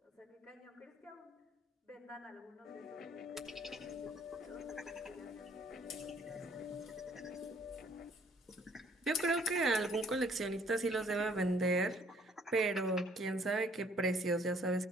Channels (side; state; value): both; normal; correlation 0.61